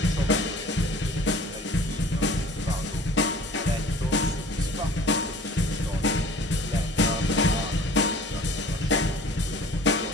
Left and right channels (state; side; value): normal; both; correlation 0.47